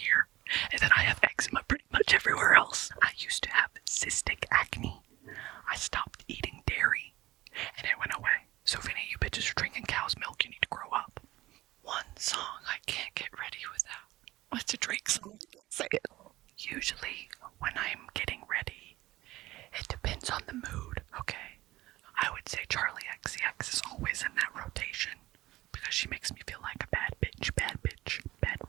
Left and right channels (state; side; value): quieter; left; 17.3 dB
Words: And then I have eczema pretty much everywhere else. I used to have cystic acne. I stopped eating dairy and it went away. So if any of you bitches are drinking cow's milk, you need to grow up. One song I can't get ready without. What's a Drake song? Say it. Usually when I'm getting ready, it depends on the mood, okay? I would say Charlie XCX is always in that rotation because she makes me feel like a bad bitch, bad bitch, bad